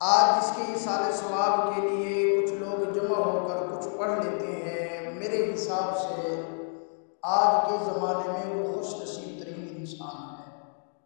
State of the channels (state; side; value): silent; right; 59 dB below the other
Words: آج اس کے ایصال ثواب کے لیے کچھ لوگ جمع ہو کر کچھ پڑھ لیتے ہیں. میرے حساب سے آج کے زمانے میں وہ خوش نصیب ترین انسان ہے.